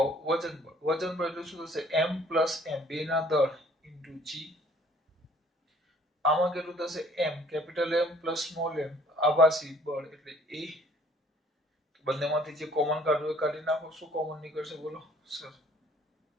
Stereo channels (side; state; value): both; normal; correlation 0.57